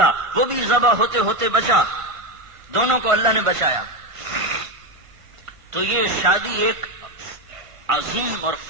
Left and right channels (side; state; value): left; late; 1.5 ms